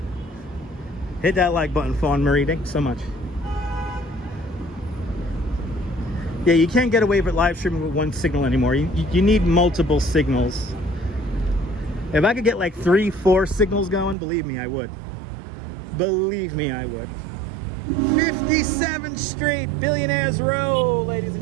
Hit that like button, Fawn Marie. Thank you so much. Yeah, you can't get away with live streaming with one signal anymore. You need multiple signals. If I could get like 3-4 signals going, believe me, I would. Believe me, I would. 57th Street, Billionaires Row, ladies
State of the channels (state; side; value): drops out; left; at 14.2 s